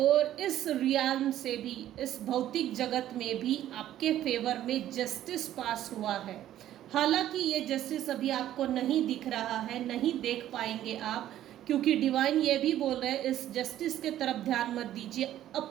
इस रियाल्म से भी, इस भौतिक जगत में भी आपके फेवर में जस्टिस पास हुआ है। हालांकि ये जस्टिस अभी आपको नहीं दिख रहा है, नहीं देख पाएंगे आप, क्योंकि डिवाइन ये भी बोल रहे हैं इस जस्टिस के तरफ ध्यान मत दीजिए,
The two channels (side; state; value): left; quieter; 12.5 dB